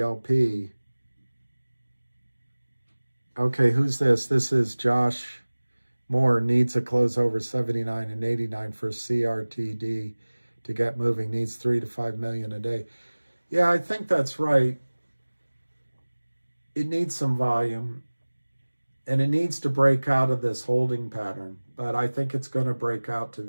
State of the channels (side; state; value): both; inverted; correlation -1.00